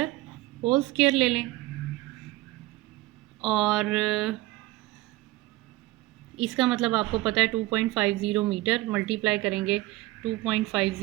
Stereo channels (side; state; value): left; quieter; 18.8 dB